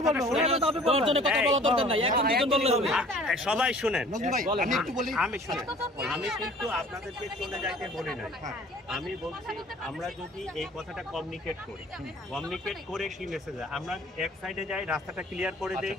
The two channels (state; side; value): normal; both; correlation 0.50